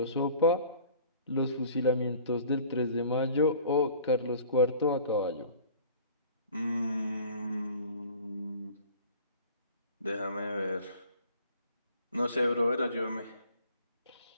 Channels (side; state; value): both; inverted; correlation -0.49